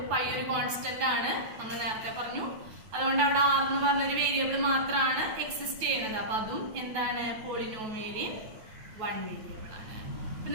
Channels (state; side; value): late; left; 9.3 ms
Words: പൈ ഒരു കോൺസ്റ്റന്റ് ആണ്, നമ്മൾ നേരത്തെ പറഞ്ഞു. അതുകൊണ്ട് അവിടെ r എന്ന് പറഞ്ഞൊരു വേരിയബിൾ മാത്രമാണ് എക്സിസ്റ്റ് ചെയ്യുന്നത്. അപ്പൊ അതും എന്താണ്? പോളിനോമിയലിൻ വൺ വേരിയബിൾ ആണ്. അപ്പൊ